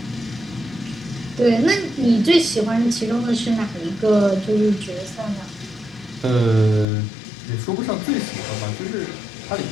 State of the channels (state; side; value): drops out; right; at 6.9 s